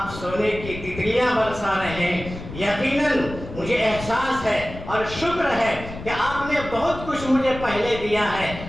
سونے کی تتلیاں برسا رہے ہیں، یقیناً مجھے احساس ہے اور شکر ہے کہ آپ نے بہت کچھ مجھے پہلے دیا ہے،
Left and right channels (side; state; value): left; noise; rumble, 12 dB below the sound